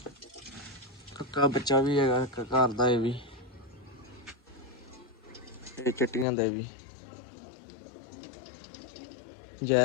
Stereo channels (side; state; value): right; drops out; at 6.2 s